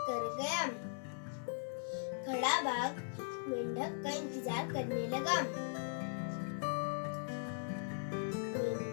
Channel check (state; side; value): silent; right; digital silence